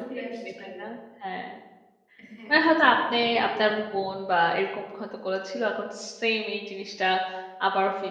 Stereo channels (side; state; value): both; identical; correlation 1.00